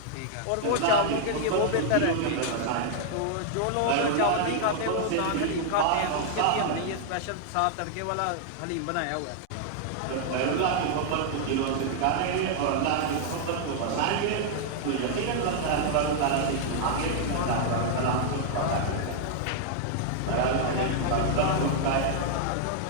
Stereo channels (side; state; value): both; different; correlation -0.01